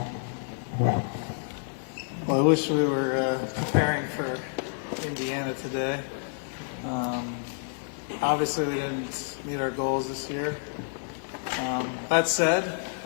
I wish we were preparing for Indiana today. Obviously, we didn't meet our goals this year. That said,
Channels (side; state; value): right; silent; 59 dB below the other